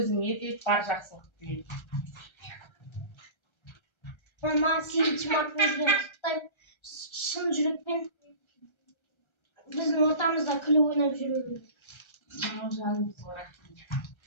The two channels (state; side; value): late; right; 1.3 ms